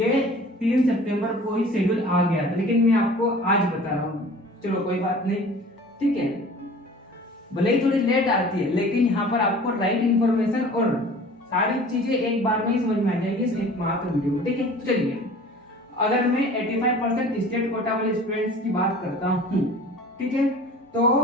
3 सितंबर को ही शेड्यूल आ गया था, लेकिन मैं आपको आज बता रहा हूँ। चलो कोई बात नहीं, ठीक है, भले ही थोड़ी लेट आती है लेकिन यहाँ पर आपको राइट इंफॉर्मेशन और सारी चीजें एक बार में ही समझ में आ जाएगी इस एक मात्र वीडियो में, ठीक है। तो चलिए, अगर मैं 85% स्टेट कोटा वाले स्टूडेंट्स की बात करता हूँ, ठीक है, तो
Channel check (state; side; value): normal; both; correlation 0.45